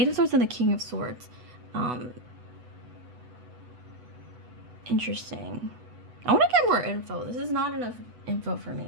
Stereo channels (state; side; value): late; left; 8.1 ms